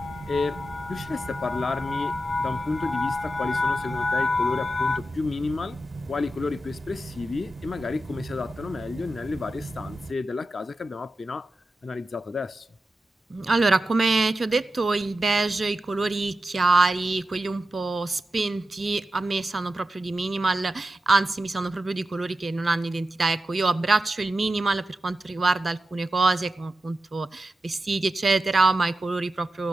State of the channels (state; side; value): normal; both; correlation 0.91